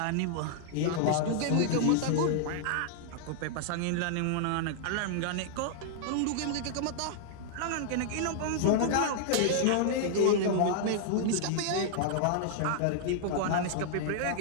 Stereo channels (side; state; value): both; different; correlation -0.01